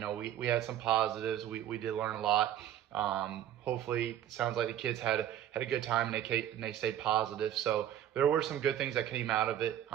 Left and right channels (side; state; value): left; quieter; 11.1 dB